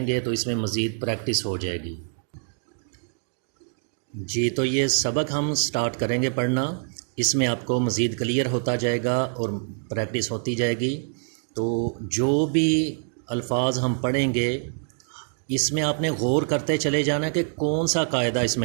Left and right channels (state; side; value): silent; left; digital silence